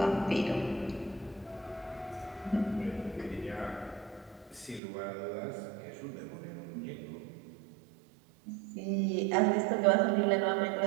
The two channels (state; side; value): drops out; left; at 4.8 s